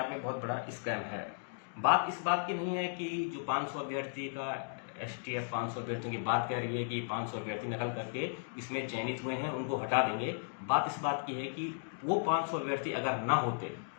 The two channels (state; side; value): silent; right; digital silence